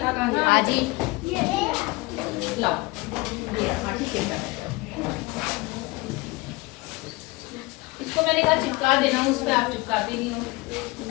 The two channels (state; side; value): quieter; right; 23.2 dB